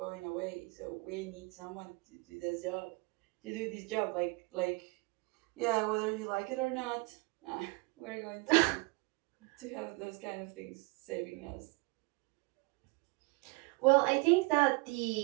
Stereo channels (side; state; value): left; quieter; 27.8 dB